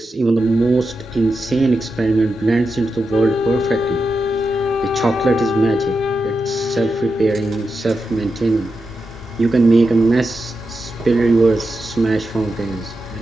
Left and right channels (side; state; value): both; normal; correlation 0.89